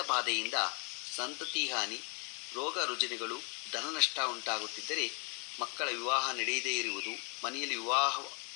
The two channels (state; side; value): quieter; right; 36.8 dB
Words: ಬಾಧೆಯಿಂದ ಸಂತತಿ ಹಾನಿ, ರೋಗ ರುಜಿನಗಳು, ಧನ ನಷ್ಟ ಉಂಟಾಗುತ್ತಿದ್ದರೆ, ಮಕ್ಕಳ ವಿವಾಹ ನಡೆಯದೇ ಇರುವುದು, ಮನೆಯಲ್ಲಿ